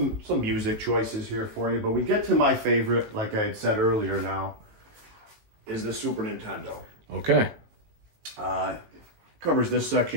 music choices here for you, but we get to my favorite, like I had said earlier now, is the Super Nintendo. Okay. Covers this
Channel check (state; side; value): late; left; 18 ms